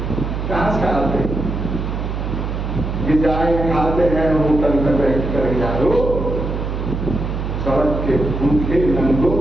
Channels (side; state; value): right; noise; hum, 3 dB below the sound